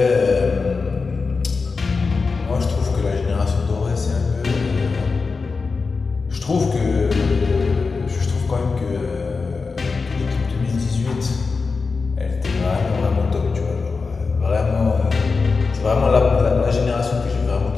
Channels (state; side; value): quieter; right; 4.5 dB